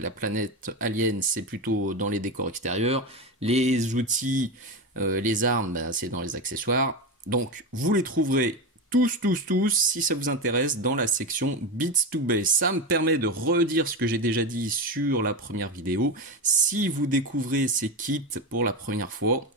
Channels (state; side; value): normal; both; correlation 0.17